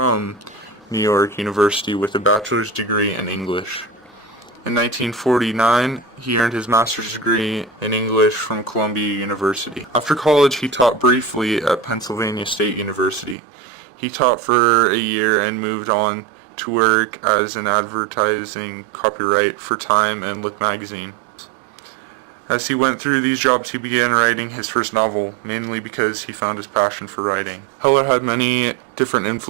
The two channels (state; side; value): drops out; left; at 13.4 s